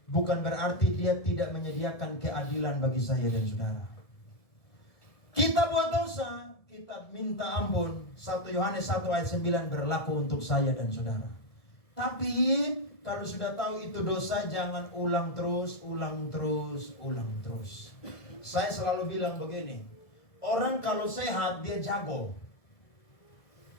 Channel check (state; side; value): late; right; 1.7 ms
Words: bukan berarti dia tidak menyediakan keadilan bagi saya dan saudara. Kita buat dosa, kita minta ampun. 1 Yohanes 1 ayat 9 berlaku untuk saya dan saudara. Tapi kalau sudah tahu itu dosa, jangan ulang terus. Saya selalu bilang begini, orang kalau sehat dia jago.